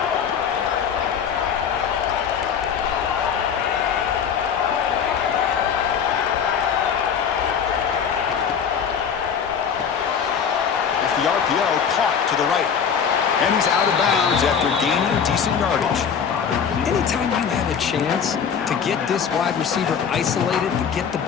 The RPO caught to the right. And he's out of bounds after gaining decent yardage. Anytime you have a chance to get this wide receiver isolated, to get the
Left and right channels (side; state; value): right; quieter; 7.2 dB